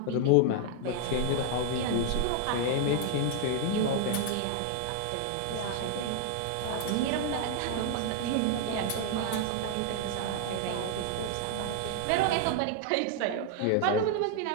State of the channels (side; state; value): both; different; correlation 0.00